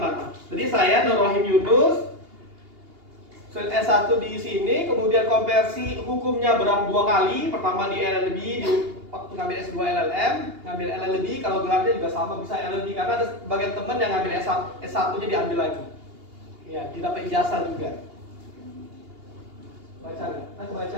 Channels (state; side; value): late; left; 2.8 ms